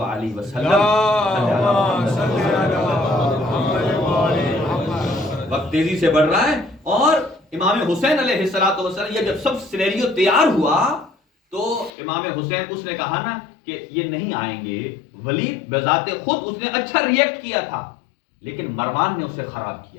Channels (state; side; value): drops out; right; at 11.9 s